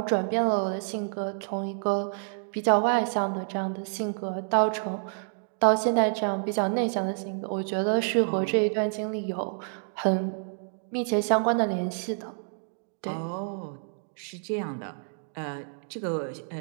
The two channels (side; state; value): left; silent; digital silence